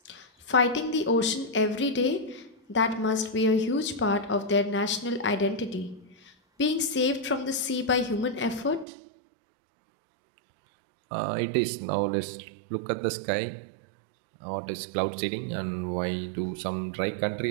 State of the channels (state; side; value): drops out; left; at 8.8 s